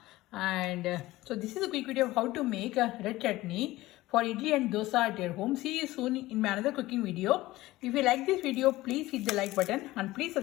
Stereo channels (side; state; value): right; quieter; 17.8 dB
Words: And so this is a quick video of how to make a red chutney for idli and dosa at your home. See you soon in my another cooking video. If you like this video, please hit the like button and please